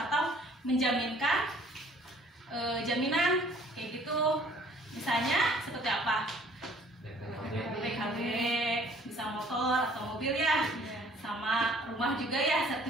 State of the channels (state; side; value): normal; both; correlation 0.56